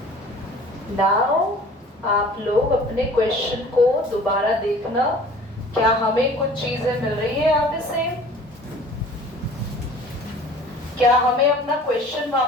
नाउ आप लोग अपने क्वेश्चन को दोबारा देखना, क्या हमें कुछ चीजें मिल रही है यहाँ पे सेम? क्या हमें अपना क्वेश्चन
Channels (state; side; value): normal; both; correlation 0.47